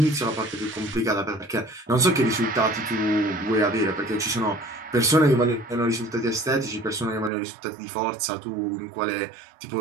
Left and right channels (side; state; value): left; drops out; at 7.3 s